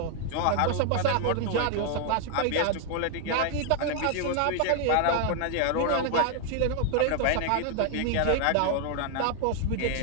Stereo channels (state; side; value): different; both; correlation 0.00